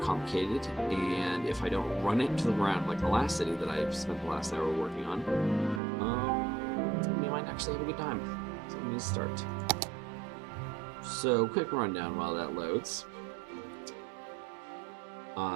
and if I don't run it into the ground like the last city that I spent the last hour working on, we might actually have a good time. So I'm going to start. So, quick rundown while that loads.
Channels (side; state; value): left; drops out; at 5.8 s